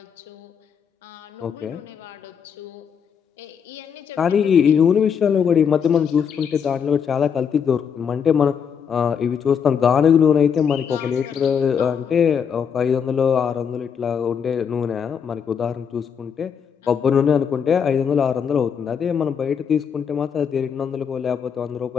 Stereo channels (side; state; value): right; quieter; 7.2 dB